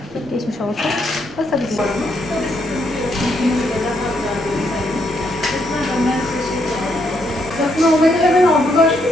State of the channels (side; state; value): both; normal; correlation 0.75